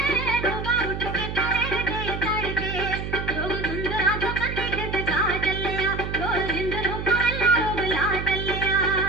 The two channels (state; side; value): noise; right; hum, 6 dB below the sound